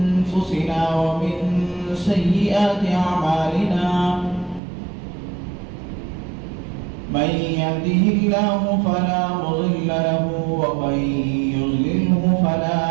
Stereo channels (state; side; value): drops out; left; at 4.6 s